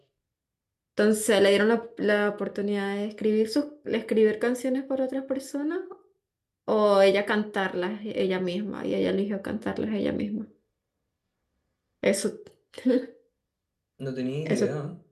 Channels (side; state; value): both; identical; correlation 1.00